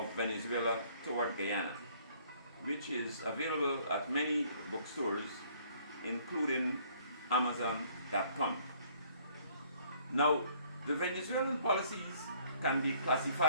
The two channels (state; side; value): inverted; both; correlation -0.60